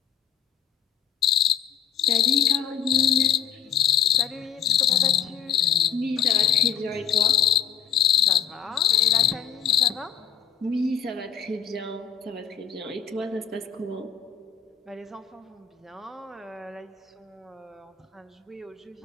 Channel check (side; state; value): right; quieter; 8.4 dB